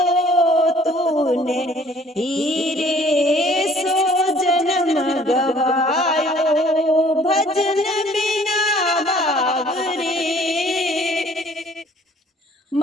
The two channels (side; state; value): both; normal; correlation 0.56